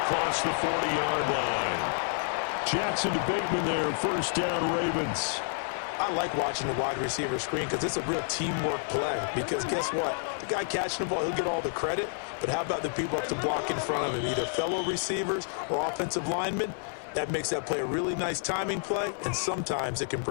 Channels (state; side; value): silent; right; digital silence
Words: across the 40-yard line. Jackson to Bateman there, first down Ravens. I like watching the wide receiver screen because it's a real teamwork play. Because guess what? The guy catching the ball, he'll get all the credit. But how about the people up to block in front of him, either fellow receivers or offensive linemen? That makes that play a really nice timing play, and sometimes it can